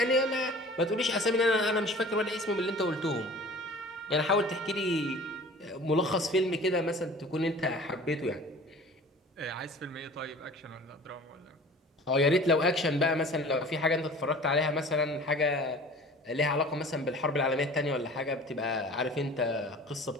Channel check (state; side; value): normal; both; correlation 0.44